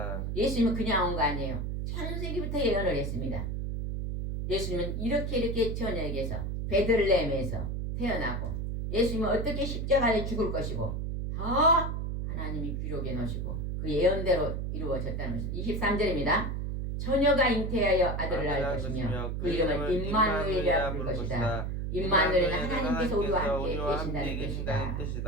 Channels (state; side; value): noise; right; hum, 2 dB below the sound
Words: 예수님은 그냥 온 거 아니에요. 창세기부터 예언을 했습니다. 예수님은 이렇게 처녀에게서 베들레헴에서 태어나고 예수님은 어떻게 십자가에 죽을 것이고 다 하나님이 기록해 놓으시고 그 예언대로 이루어졌다는 것입니다. 23절입니다. 처녀가 잉태하여 아들을 낳을 것이며 그 이름을 임마누엘이라 부를 것이다. 임마누엘은 하나님께서 우리와 함께 계신다는